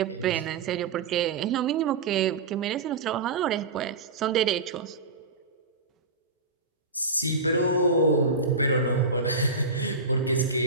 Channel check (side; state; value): left; quieter; 3.7 dB